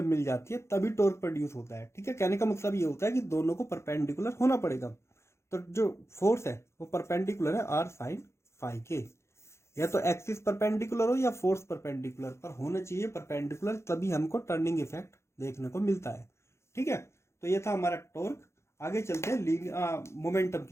मिल जाती है तभी टॉर्क प्रोड्यूस होता है। ठीक है, कहने का मतलब ये होता है कि दोनों को परपेंडिकुलर होना पड़ेगा, तो जो फोर्स है वो परपेंडिकुलर है आर साइन फाई के, या तो एक्सिस परपेंडिकुलर हो या फोर्स परपेंडिकुलर, पर होना चाहिए परपेंडिकुलर, तभी हमको टर्निंग इफेक्ट देखने को मिलता है। ठीक है, तो ये था हमारा टॉर्क। आगे चलते हैं मोमेंटम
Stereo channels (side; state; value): right; late; 0.13 ms